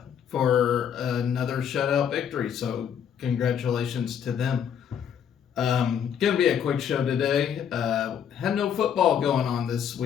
for another shutout victory, so congratulations to them. Gonna be a quick show today. Had no football going on this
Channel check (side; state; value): right; quieter; 8.4 dB